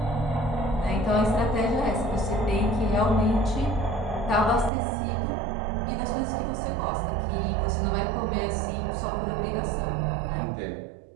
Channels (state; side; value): drops out; left; at 4.7 s